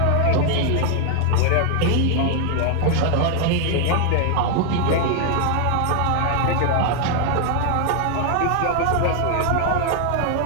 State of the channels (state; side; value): different; both; correlation 0.00